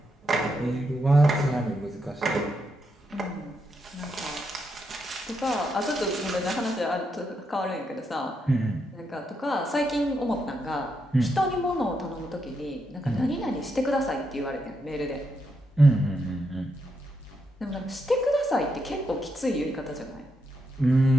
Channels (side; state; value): both; normal; correlation 0.81